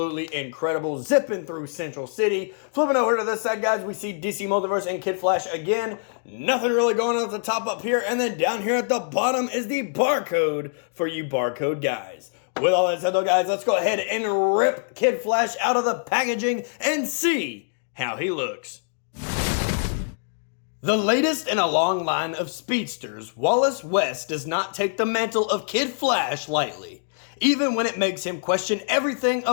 incredible, zipping through Central City. Flipping over to this side, guys, we see DC Multiverse and Kid Flash again. Nothing really going on at the top up here, and then down here at the bottom is the barcode for you barcode guys. With all that said, though, guys, let's go ahead and rip Kid Flash out of the packaging and see how he looks. The latest in a long line of speedsters, Wallace West does not take the mantle of Kid Flash lightly, even when it makes him question everything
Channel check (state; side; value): silent; right; digital silence